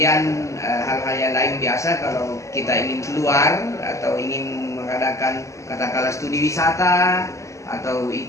hal-hal yang lain biasa kalau kita ingin keluar atau ingin mengadakan katakanlah studi wisata atau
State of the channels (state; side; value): late; right; 0.15 ms